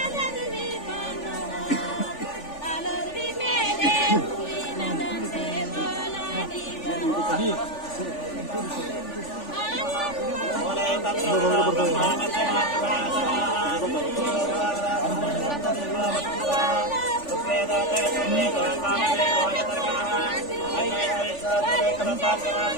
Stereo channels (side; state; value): right; late; 3.4 ms